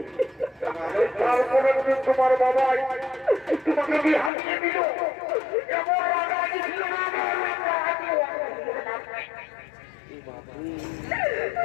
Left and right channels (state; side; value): drops out; right; at 4.3 s